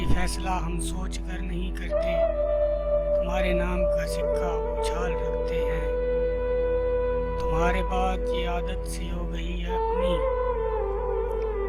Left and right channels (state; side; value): identical; both; correlation 1.00